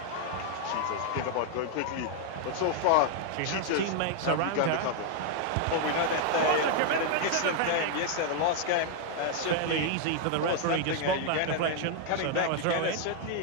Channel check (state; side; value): different; both; correlation 0.00